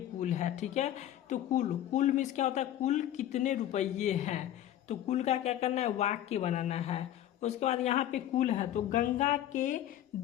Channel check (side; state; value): right; quieter; 12.0 dB